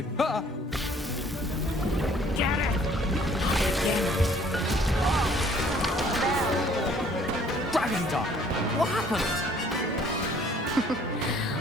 Ah! Get it! Dragon Duck! What happened?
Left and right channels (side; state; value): both; normal; correlation 0.58